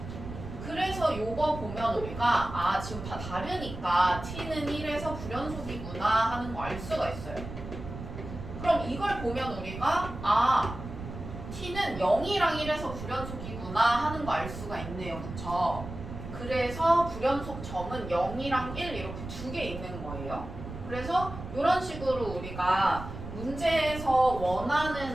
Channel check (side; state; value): right; noise; rumble, 10 dB below the sound